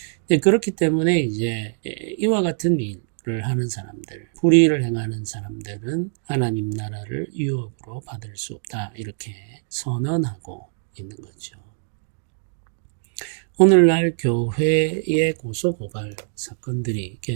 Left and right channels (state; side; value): silent; left; digital silence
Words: 그렇기 때문에 이제 이와 같은 일을 하는 사람들, 불의를 행하는 사람들은 하나님 나라를 유업으로 받을 수 없다, 이렇게 선언하고 있는 거죠. 오늘날 교회의 고소고발 사건들이